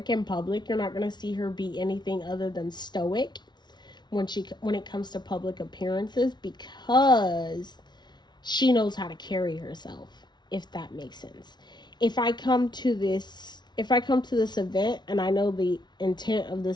in public. You're not gonna see her be anything other than stoic when it comes to public appearances, because she knows how to carry herself, if that makes sense. If I come to this event and I know the intent of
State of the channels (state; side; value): late; right; 0.20 ms